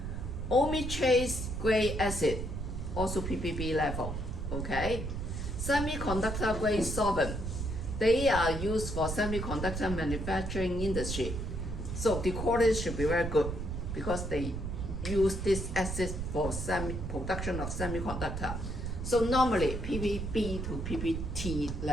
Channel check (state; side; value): noise; right; rumble, 4 dB below the sound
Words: Omi-trace grade acid, also ppb level, okay? Semiconductor grade solvent, they are used for semiconductor manufacturing industry. So the quality should be very good because they use this acid for production of semiconductor. So normally ppb to ppt